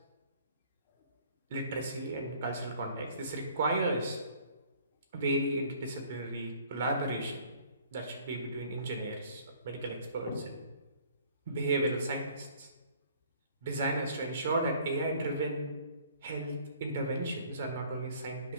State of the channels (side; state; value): both; inverted; correlation -0.55